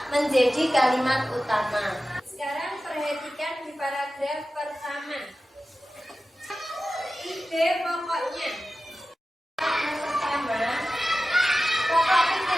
menjadi kalimat utama. Sekarang perhatikan di paragraf pertama. Ide pokoknya. Yang pertama, pokok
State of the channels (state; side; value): normal; both; correlation 0.94